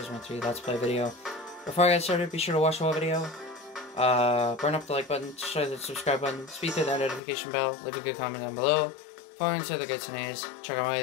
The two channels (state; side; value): drops out; right; at 7.2 s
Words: 3 Let's Play video. Before I get started, be sure to watch the whole video. Burn up the like button, share the subscribe button, speed through that notification bell, leave a good comment down below. Follow into the goods and A's. Check out my